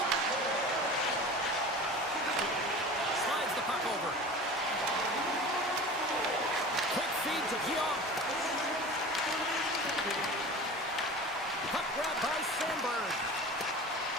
Slides the puck over. Quick feed to Keogh. Puck grab by Sandberg.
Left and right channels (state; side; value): normal; both; correlation 0.36